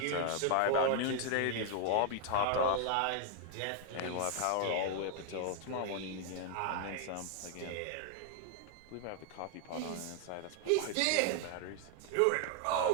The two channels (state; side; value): different; both; correlation 0.00